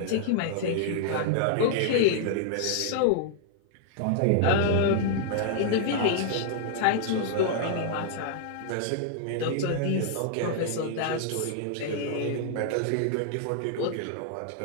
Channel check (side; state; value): both; different; correlation -0.01